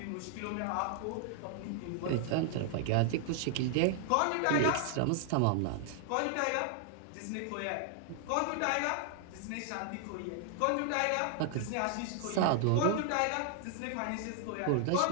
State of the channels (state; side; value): different; both; correlation 0.00